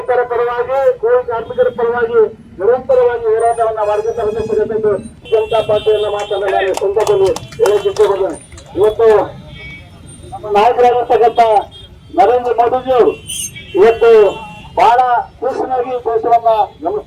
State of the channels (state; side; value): identical; both; correlation 1.00